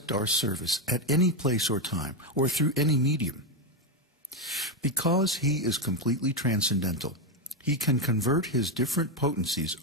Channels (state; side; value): normal; both; correlation 0.07